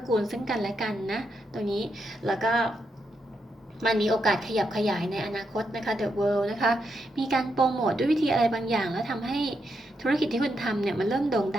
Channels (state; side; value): normal; both; correlation 0.82